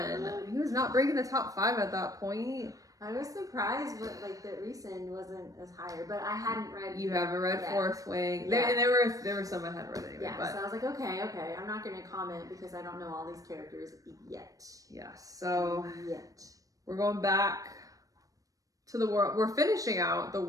he was not breaking the top 5 at that point. I was surprised, but like the recent wasn't as higher. But I hadn't read. You haven't read Fourth Wing. Yeah. There were some I hadn't read anyway. Yeah, but. so I was like, okay, I'm not gonna comment because I don't know all these characters yet. Yes, so we're going back to the world. We're finishing out the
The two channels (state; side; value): late; left; 0.17 ms